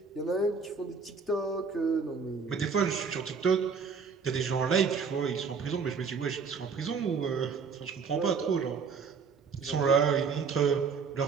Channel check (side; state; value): left; quieter; 5.5 dB